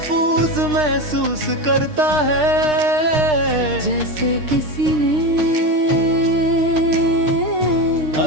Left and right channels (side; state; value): left; late; 6.6 ms